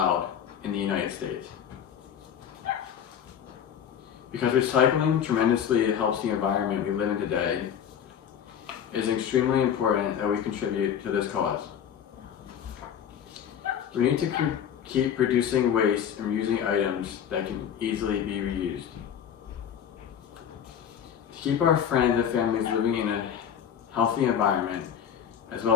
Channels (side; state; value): right; quieter; 8.7 dB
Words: in the United States. Because recycling tremendously helps the environment we live in today, it is extremely important that we contribute to this cause. We need to keep producing waste and reusing items that can easily be reused. To keep our friends and families living in a healthy environment, as